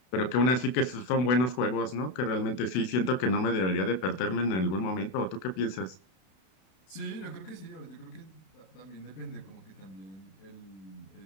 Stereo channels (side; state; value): right; late; 32 ms